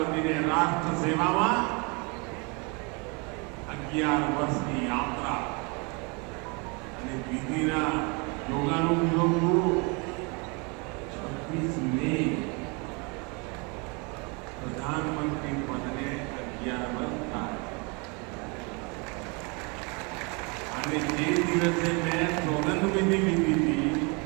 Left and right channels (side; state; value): left; quieter; 31.2 dB